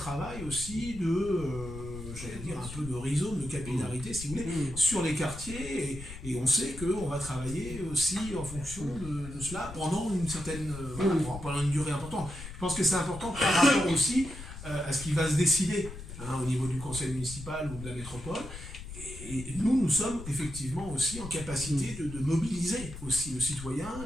aussi j'allais dire, un peu de rhizome, de capillarité, si vous voulez, sur les quartiers. Et on sait qu'on va travailler aussi en fonction de cela pendant une certaine, pendant une durée importante. Je pense que c'est important par rapport aussi à ce qui va se décider au niveau du conseil municipal ou de la métropole. Et nous sommes effectivement aussi en capacité de mobiliser aussi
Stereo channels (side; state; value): left; noise; rumble, 11 dB below the sound